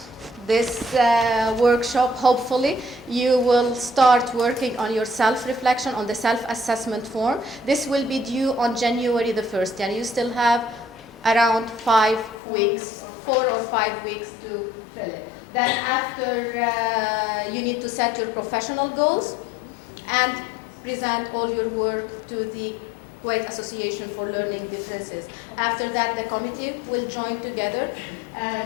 this workshop, hopefully, you will start working on your self-reflection, on the self-assessment form. This will be due on January the 1st, and you still have around 5 weeks, 4 or 5 weeks to fill it. Then after, you need to set your professional goals and present all your work to the Kuwait Association for Learning Differences. After that, the committee will join together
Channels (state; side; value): drops out; right; at 12.4 s